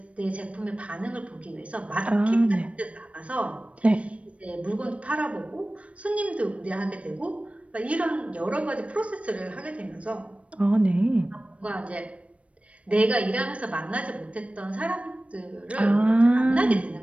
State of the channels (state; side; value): late; left; 0.063 ms